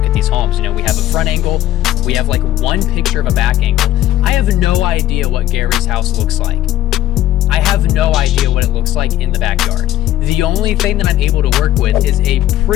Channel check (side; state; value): right; quieter; 13.6 dB